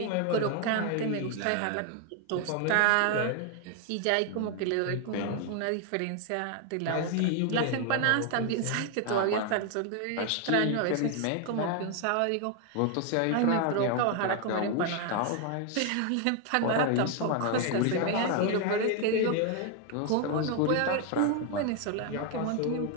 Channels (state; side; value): different; both; correlation 0.01